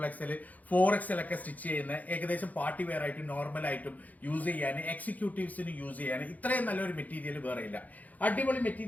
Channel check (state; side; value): late; right; 0.078 ms